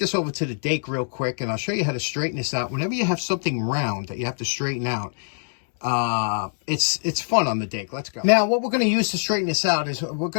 over to the Dake real quick, and I'll show you how to straighten this out. Whenever you have something round that you have to straighten out, it's fun on the Dake. Let's go. Now, what we're going to use to straighten this out is we're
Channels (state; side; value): silent; right; digital silence